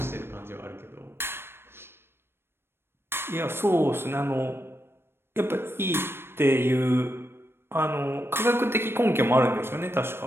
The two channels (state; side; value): late; left; 0.12 ms